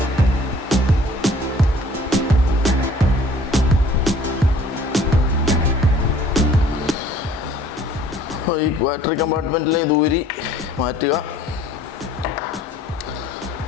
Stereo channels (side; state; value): both; normal; correlation 0.54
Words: ഈ ബാറ്ററി കമ്പാർട്ട്മെൻറ്റിലെ ഇത് ഊരി മാറ്റുക.